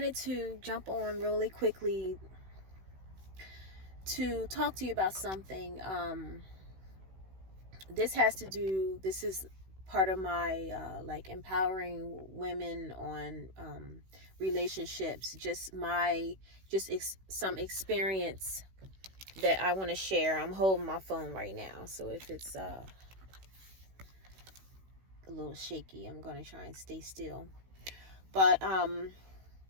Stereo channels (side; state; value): left; late; 16 ms